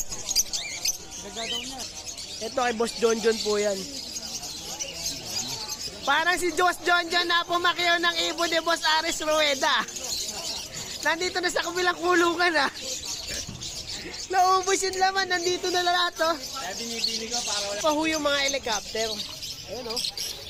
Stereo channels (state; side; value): identical; both; correlation 1.00